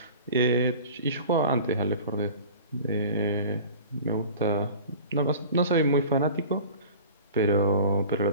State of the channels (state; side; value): inverted; both; correlation -0.41